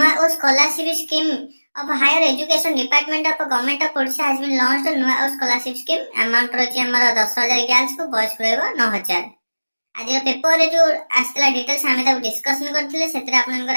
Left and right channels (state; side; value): inverted; both; correlation -1.00